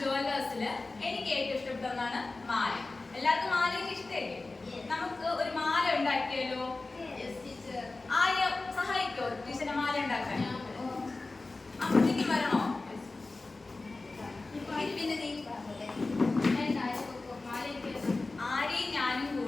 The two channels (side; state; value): right; quieter; 3.4 dB